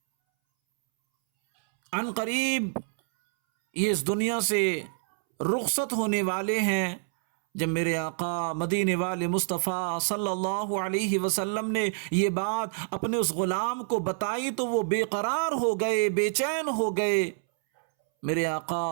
عن قریب یہ اس دنیا سے رخصت ہونے والے ہیں۔ جب میرے آقا مدینے والے مصطفیٰ صلی اللہ علیہ وسلم نے یہ بات اپنے اس غلام کو بتائی تو وہ بے قرار ہو گئے، بے چین ہو گئے۔ میرے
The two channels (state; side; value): silent; left; 60 dB below the other